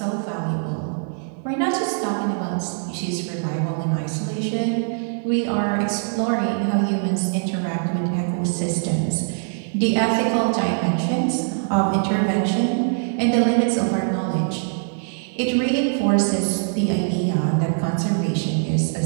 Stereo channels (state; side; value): silent; left; 62 dB below the other